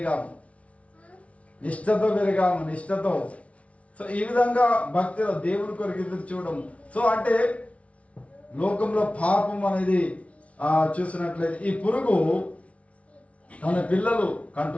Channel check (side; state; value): right; late; 0.064 ms